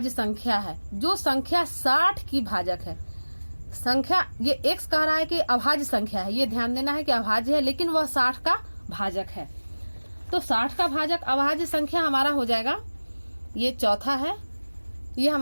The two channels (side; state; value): both; inverted; correlation -1.00